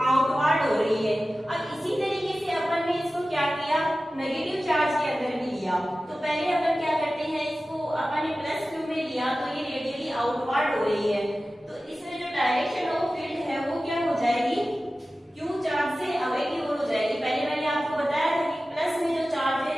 आउटवर्ड हो रही है। अब इसी तरीके से अपन ने इसको क्या किया, नेगेटिव चार्ज के अंदर भी लिया। तो पहले अपन क्या करते हैं, इसको अपन ने प्लस क्यू में लिया तो ये रेडियली आउटवर्ड हो रही है। तो इसमें जो डायरेक्शन ऑफ फील्ड है वो क्या हो जाएगी, क्यू चार्ज से अवे की ओर हो जाएगी। पहले मैंने आपको बताया था कि प्लस में जो चार्ज है,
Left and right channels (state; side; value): normal; both; correlation 0.95